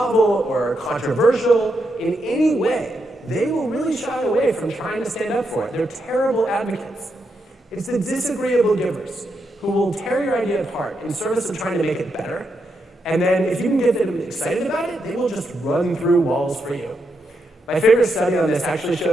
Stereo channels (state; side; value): normal; both; correlation 0.82